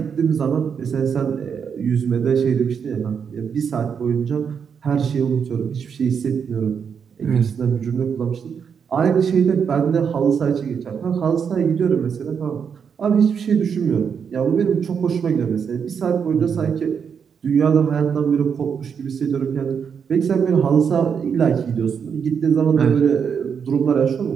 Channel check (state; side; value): quieter; left; 6.9 dB